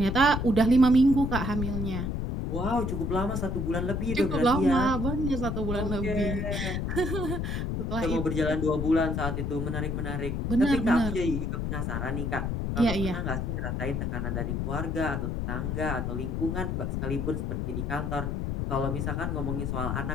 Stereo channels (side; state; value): left; noise; rumble, 1 dB below the sound